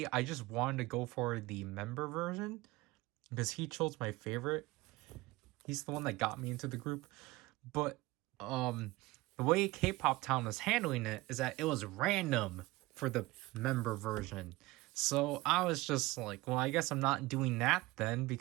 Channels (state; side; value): quieter; left; 20.6 dB